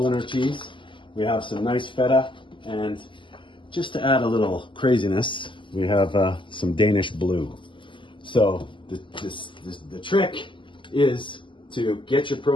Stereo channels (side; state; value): right; late; 0.24 ms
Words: cheese. We have some nice feta, and just to add a little craziness, we have some Danish blue. So the trick is to get your